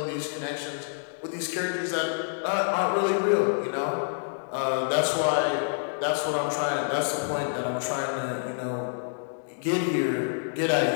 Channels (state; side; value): silent; right; digital silence